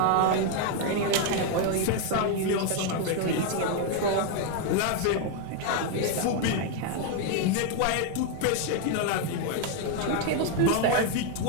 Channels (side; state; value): both; different; correlation 0.01